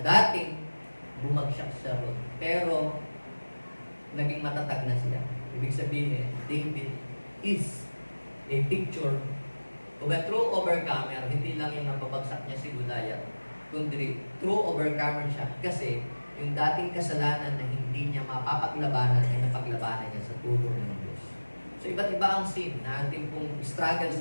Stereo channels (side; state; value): both; inverted; correlation -1.00